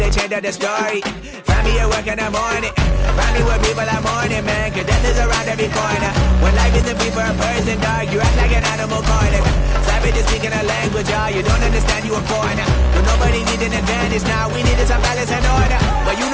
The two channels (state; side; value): identical; both; correlation 1.00